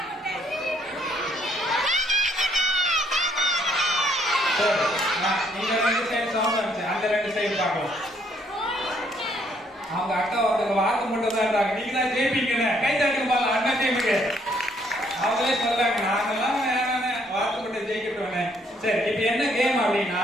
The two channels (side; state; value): both; normal; correlation 0.68